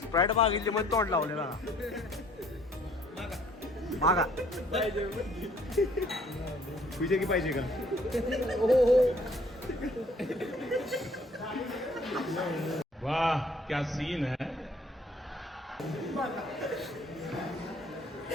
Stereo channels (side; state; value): both; normal; correlation 0.59